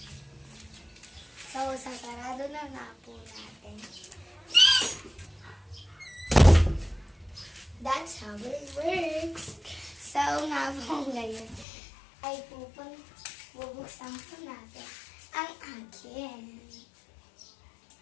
So, sasarado na nga po natin. That's how it works. So, nga po ngayon ay bubuksan po natin ang akin.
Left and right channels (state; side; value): drops out; right; at 11.7 s